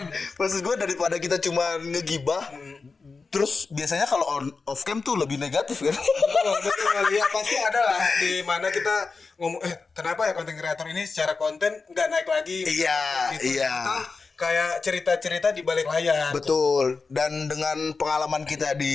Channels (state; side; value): quieter; right; 4.4 dB